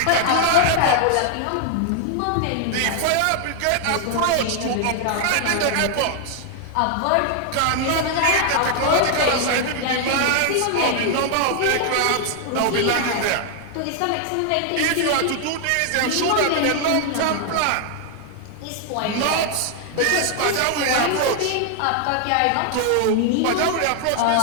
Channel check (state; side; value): different; both; correlation 0.00